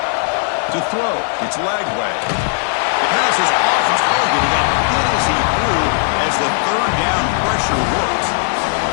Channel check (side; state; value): right; silent; digital silence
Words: To throw, it's Lagway. The pass is off target. He got hit as he threw as the third down pressure worked.